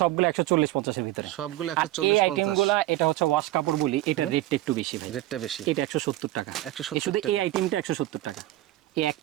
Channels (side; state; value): left; quieter; 16.1 dB